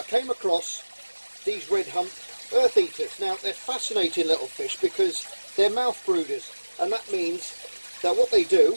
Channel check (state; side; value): inverted; both; correlation -1.00